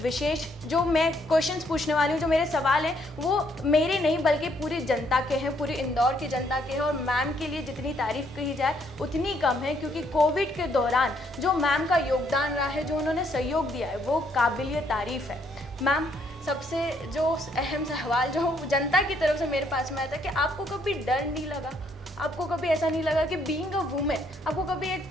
जो मैं क्वेश्चंस पूछने वाली हूँ, जो मेरे सवाल हैं वो मेरे नहीं बल्कि पूरी जनता के हैं, पूरी इंदौर की जनता के हैं। और मैम के लिए जितनी तारीफ कही जाए उतनी कम है, क्योंकि कोविड के दौरान जो मैम का योगदान रहा है, जो उन्होंने सहयोग दिया है, वो काबिलिय तारीफ है। मैम, सबसे जो अहम सवाल जो जनता की तरफ से मेरे पास में आया था कि आपको कभी डर नहीं लगा, आपको कभी ऐसा नहीं लगा कि बीइंग अ वुमेन आपको कभी एक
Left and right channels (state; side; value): normal; both; correlation 0.70